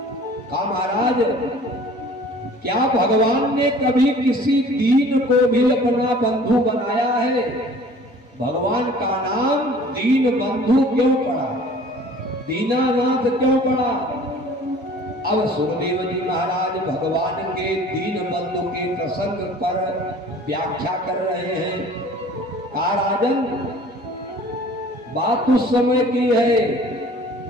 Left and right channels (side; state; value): both; normal; correlation 0.49